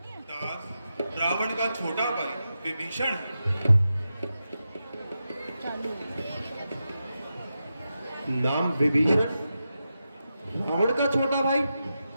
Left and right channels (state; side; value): inverted; both; correlation -0.89